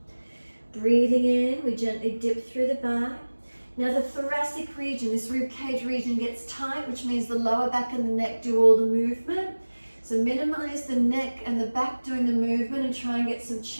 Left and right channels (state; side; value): inverted; both; correlation -1.00